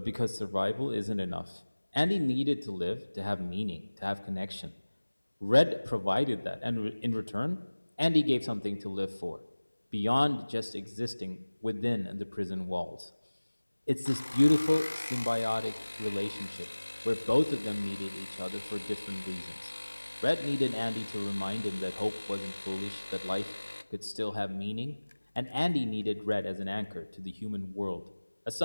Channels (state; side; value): inverted; both; correlation -1.00